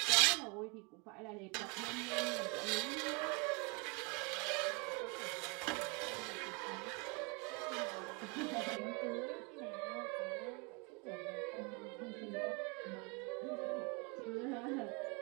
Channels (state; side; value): quieter; left; 32.0 dB